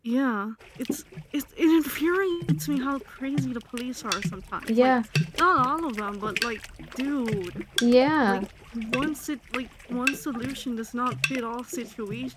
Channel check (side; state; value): both; identical; correlation 1.00